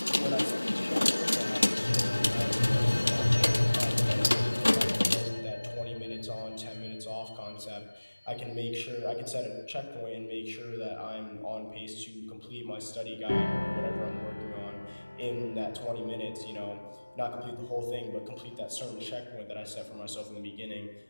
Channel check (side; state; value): both; inverted; correlation -1.00